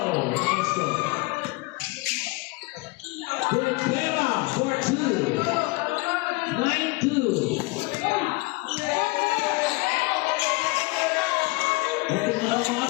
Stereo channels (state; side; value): quieter; right; 24.6 dB